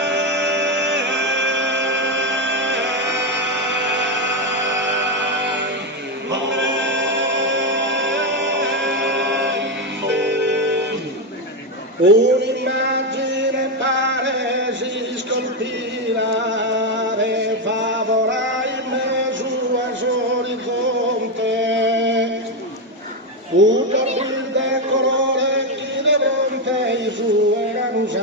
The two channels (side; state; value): both; normal; correlation 0.08